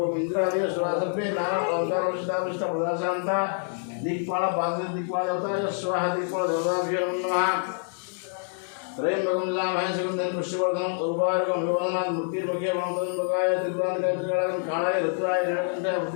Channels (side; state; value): right; silent; 60 dB below the other